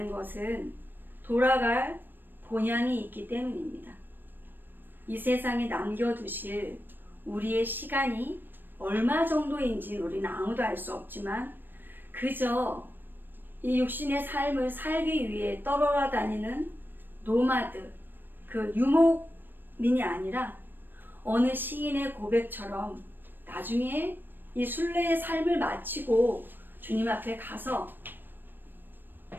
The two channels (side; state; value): left; late; 0.094 ms